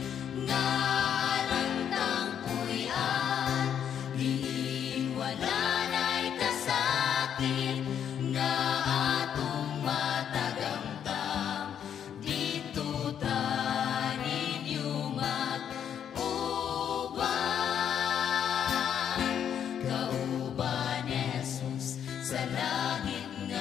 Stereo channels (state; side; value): quieter; right; 8.9 dB